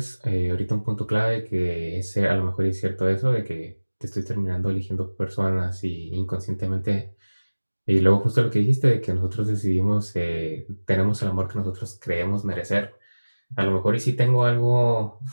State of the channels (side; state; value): both; inverted; correlation -1.00